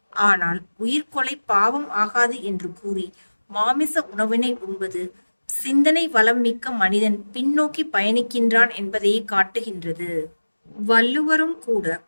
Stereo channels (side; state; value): both; inverted; correlation -1.00